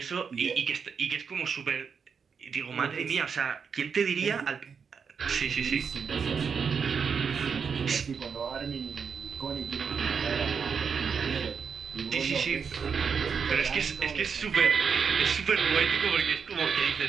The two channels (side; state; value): left; quieter; 6.2 dB